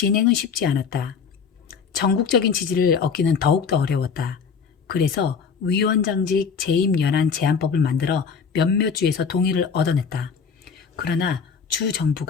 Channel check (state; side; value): quieter; right; 6.0 dB